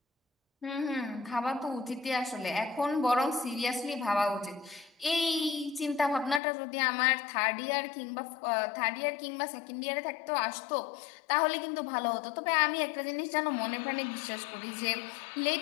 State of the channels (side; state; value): right; drops out; at 6.4 s